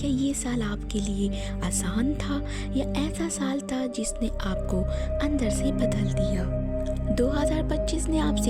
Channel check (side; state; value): both; identical; correlation 1.00